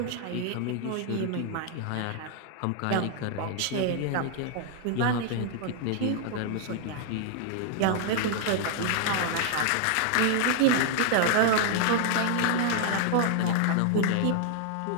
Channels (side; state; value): both; different; correlation 0.00